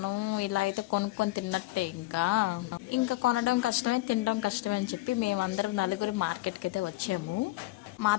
ఇలా అయితే కొనుక్కొని తిన్నట్టే. ఇంకా కొనడం కష్టమే, తినడం కష్టమే అని చెప్పి మేమందరం నలుగురు మార్కెట్కి అయితే వచ్చాము.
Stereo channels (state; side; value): quieter; right; 18.8 dB